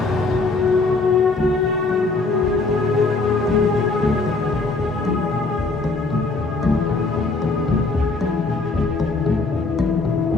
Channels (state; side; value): quieter; right; 3.6 dB